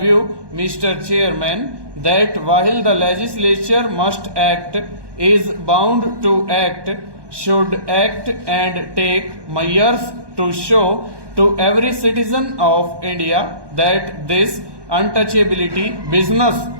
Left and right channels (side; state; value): left; late; 1.2 ms